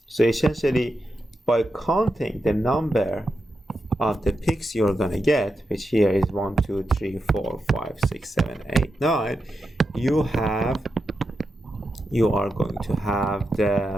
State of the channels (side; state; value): both; normal; correlation 0.87